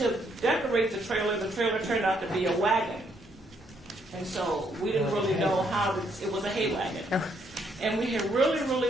decorate the trailer turned out to be a wagon. And so we didn't really know how it was a hay wagon. And we had really,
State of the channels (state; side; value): normal; both; correlation 0.72